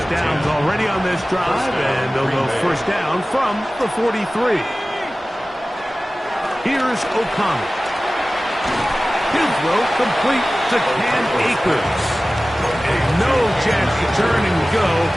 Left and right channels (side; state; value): both; normal; correlation 0.97